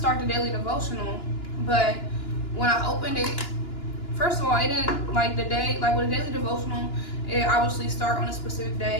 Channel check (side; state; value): right; late; 2.9 ms